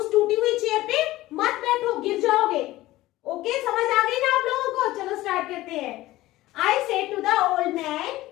टूटी हुई चेयर पे मत बैठो, गिर जाओगे। ओके, समझ आ गई ना आप लोगों को? चलो स्टार्ट करते हैं। I said to the old man,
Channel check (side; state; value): right; quieter; 17.1 dB